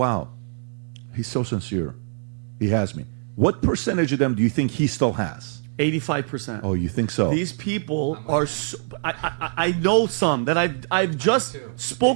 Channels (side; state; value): left; silent; 63 dB below the other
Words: he's so sincere. He has me. What percentage of them do you think he still has? 85%. Oh, you think so? These people I'm with are. him. I know some that I've just too.